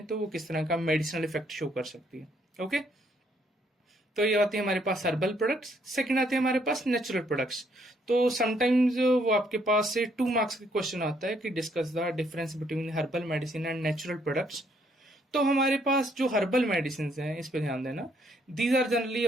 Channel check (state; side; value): normal; both; correlation 0.69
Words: तो वो किस तरह का मेडिसिनल इफेक्ट शो कर सकती है। ओके, तो ये आते हैं हमारे पास हर्बल प्रोडक्ट्स। सेकंड आते हैं हमारे पास नेचुरल प्रोडक्ट्स। तो समटाइम्स वो आपके पास से 2 मार्क्स का क्वेश्चन आता है कि discuss the difference between herbal medicine and natural products. तो हमारे पास जो हर्बल मेडिसिन हैं, इस पे ध्यान देना, these are generally